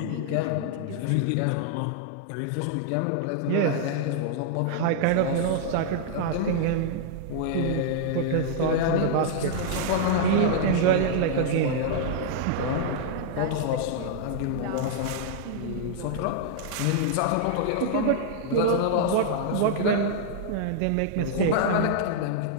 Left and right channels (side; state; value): both; different; correlation -0.01